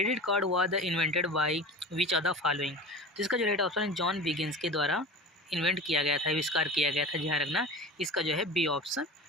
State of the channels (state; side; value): normal; both; correlation 0.34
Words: card was invented by which of the following? तो इसका जो राइट ऑप्शन है जॉन बिगिंस के द्वारा इन्वेंट किया गया था, आविष्कार किया गया था, ध्यान रखना इसका जो है बी ऑप्शन